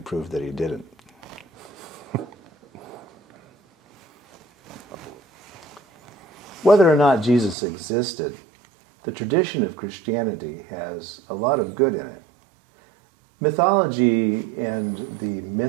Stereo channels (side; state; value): left; drops out; at 7.6 s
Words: prove that he didn't. Whether or not Jesus existed, the tradition of Christianity has a lot of good in it. Mythology and the